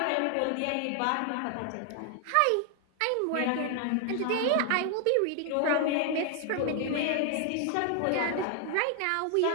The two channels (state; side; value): different; both; correlation 0.00